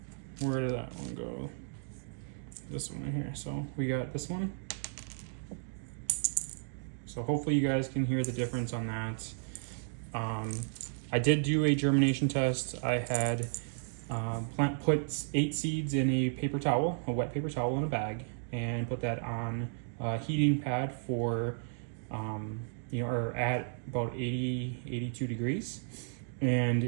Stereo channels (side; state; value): left; silent; digital silence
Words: Where did that one go? This one right here. So we got this one. So hopefully you guys can hear the difference on that. I did do a germination test. I had put 8 seeds in a paper towel, a wet paper towel in a bag, and put that on a heating pad for, or at about 82 degrees.